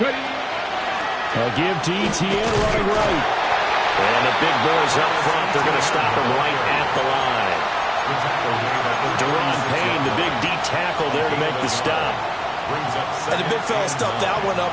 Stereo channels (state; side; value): identical; both; correlation 1.00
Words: give to Etienne running right. And the big boys up front. They're going to stop him right at the line. Deron Payne, the big D tackle there to make the stop. And the big fella stuffed that one